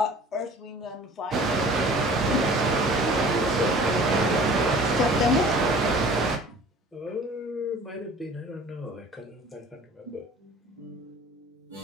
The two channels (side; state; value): both; normal; correlation 0.47